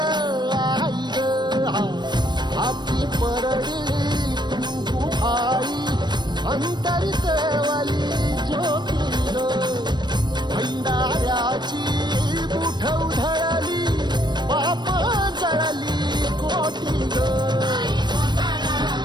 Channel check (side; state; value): left; late; 0.21 ms